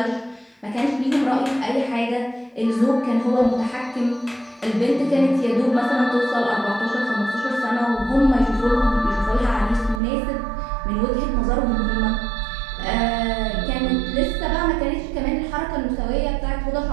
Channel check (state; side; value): drops out; left; at 10.0 s